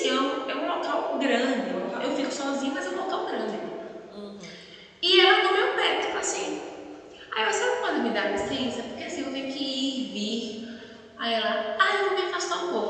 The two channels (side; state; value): both; identical; correlation 1.00